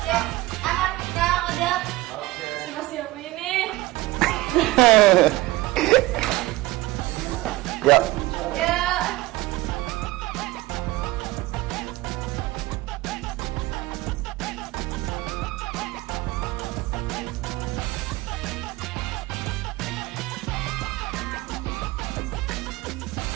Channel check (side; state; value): left; quieter; 19.3 dB